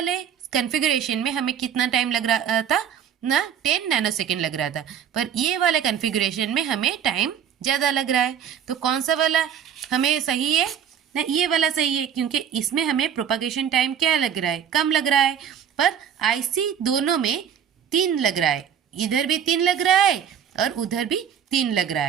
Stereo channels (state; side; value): quieter; left; 8.6 dB